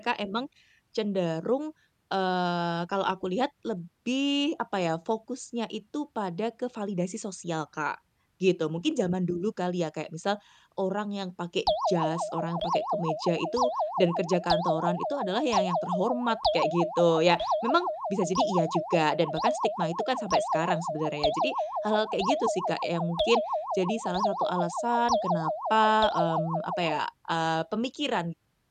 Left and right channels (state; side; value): identical; both; correlation 1.00